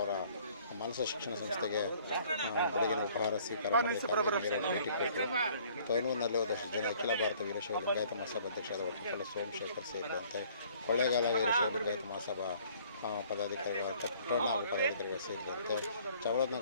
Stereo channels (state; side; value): inverted; both; correlation -0.57